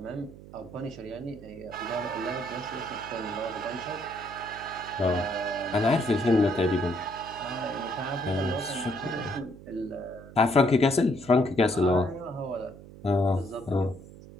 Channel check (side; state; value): right; noise; hum, 17 dB below the sound